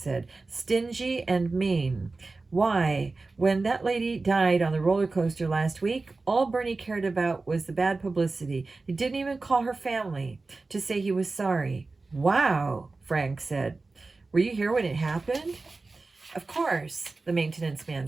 Stingy and mean. Why, when that lady died on the roller coaster last week, all Bernie cared about was the bad publicity. He didn't even call her family to say he was sorry. Wow, Frank said. Were you here when it happened? Of course, the maintenance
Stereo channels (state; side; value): quieter; left; 3.6 dB